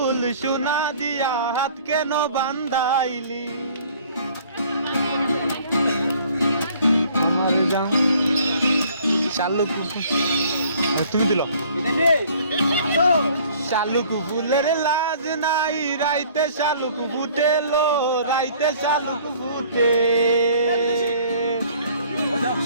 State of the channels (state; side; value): inverted; both; correlation -0.55